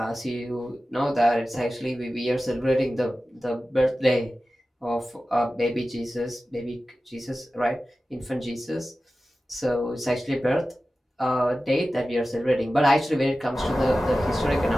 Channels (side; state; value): both; normal; correlation 0.95